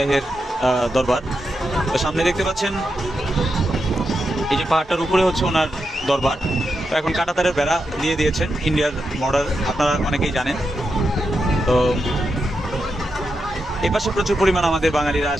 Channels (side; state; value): both; normal; correlation 0.86